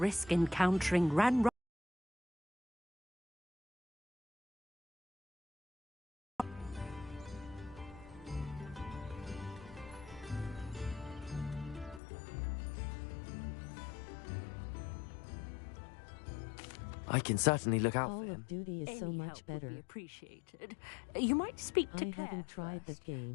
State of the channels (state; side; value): drops out; right; at 12.0 s